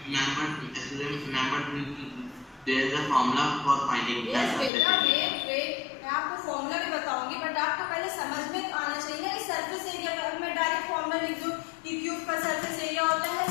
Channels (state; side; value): drops out; right; at 4.7 s